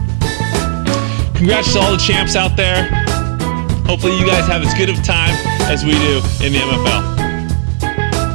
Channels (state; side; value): silent; left; 72 dB below the other